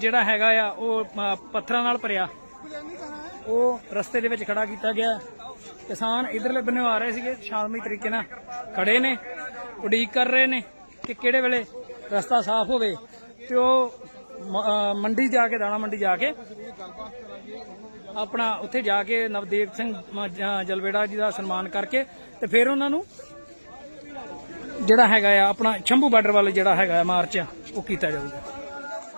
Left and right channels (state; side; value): inverted; both; correlation -1.00